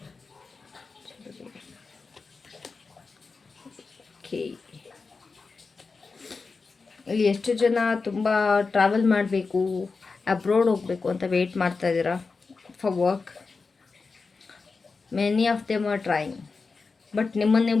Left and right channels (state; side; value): quieter; right; 4.4 dB